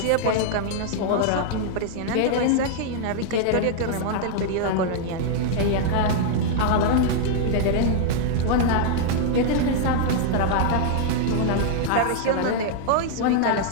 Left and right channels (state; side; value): different; both; correlation -0.01